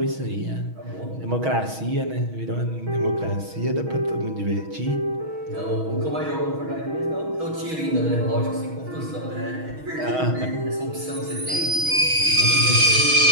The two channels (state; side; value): late; left; 6.3 ms